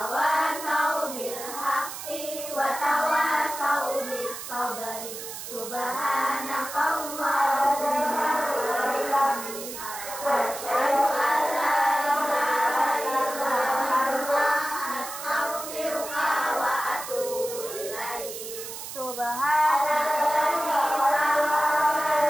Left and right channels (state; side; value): noise; right; hiss, 9 dB below the sound